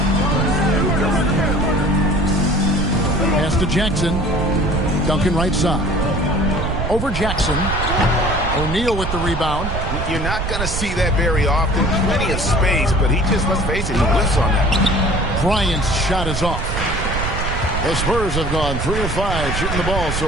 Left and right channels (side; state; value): right; noise; rumble, 3 dB below the sound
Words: Pass to Jackson. Duncan right side. Over Jackson. O'Neal with the rebound. You're not going to see that very often. Plenty of space, but he just, let's face it, he whiffs on that. Bryant's shot is off. The Spurs have gone 3 of 5 shooting the ball